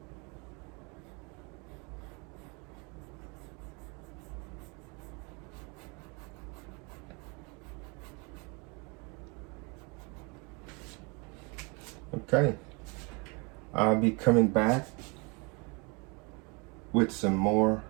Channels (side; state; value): left; quieter; 30.8 dB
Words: Okay, I'll be coming back with some more